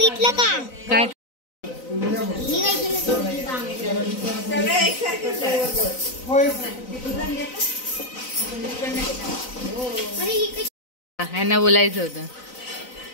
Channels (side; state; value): right; late; 4.0 ms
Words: का काय? ह्यांना बोलायचं होतं